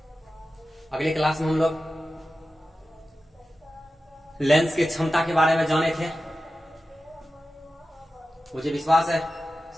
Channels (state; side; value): normal; both; correlation 0.93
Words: अगले क्लास में हम लोग लेंस की क्षमता के बारे में जाने थे। मुझे विश्वास है